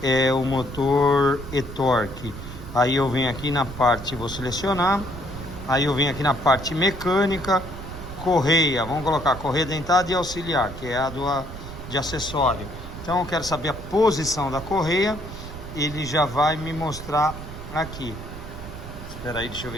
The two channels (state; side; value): noise; right; rumble, 11 dB below the sound